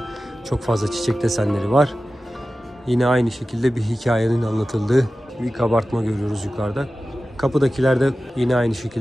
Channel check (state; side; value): normal; both; correlation 0.95